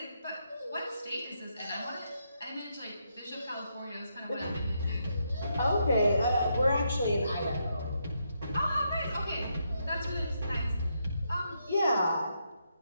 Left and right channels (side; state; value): both; inverted; correlation -0.79